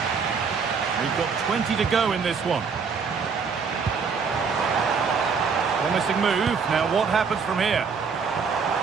We've got 20 to go in this one. Promising move. Now what happens from here?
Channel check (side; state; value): left; quieter; 5.6 dB